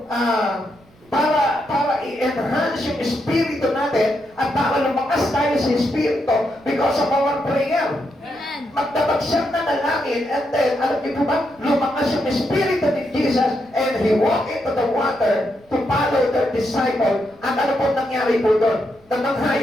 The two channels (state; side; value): noise; right; rumble, 30 dB below the sound